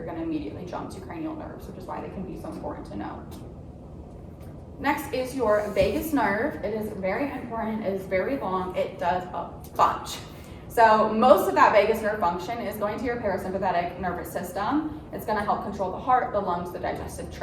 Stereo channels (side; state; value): both; identical; correlation 1.00